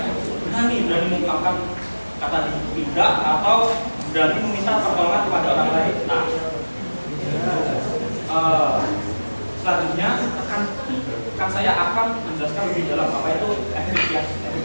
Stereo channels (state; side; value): inverted; both; correlation -1.00